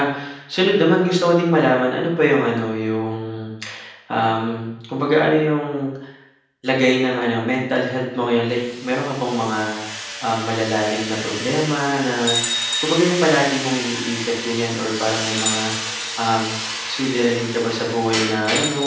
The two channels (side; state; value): both; identical; correlation 1.00